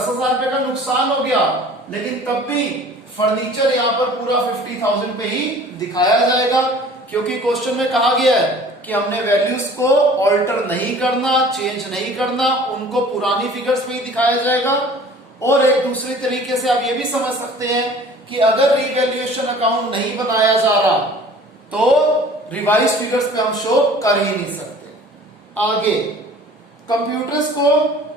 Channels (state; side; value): normal; both; correlation 0.47